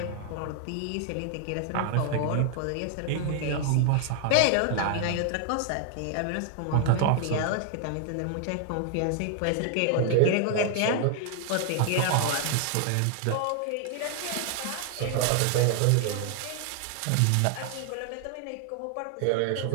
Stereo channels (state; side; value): different; both; correlation 0.00